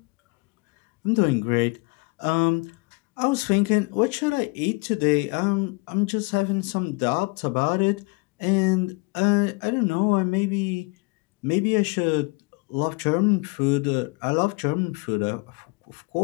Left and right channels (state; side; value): quieter; right; 28.5 dB